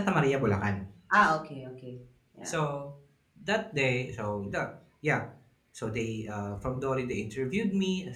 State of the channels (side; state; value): both; identical; correlation 1.00